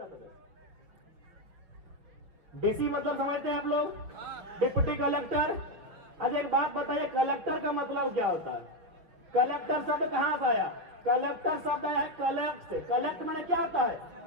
डीसी मतलब समझते हैं आप लोग? Deputy collector. अच्छा एक बात बताइए, कलेक्टर का मतलब क्या होता है? कलेक्टर शब्द कहां से आया? कलेक्टर शब्द आया है कलेक्ट से। कलेक्ट माने क्या होता है?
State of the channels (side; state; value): left; late; 6.0 ms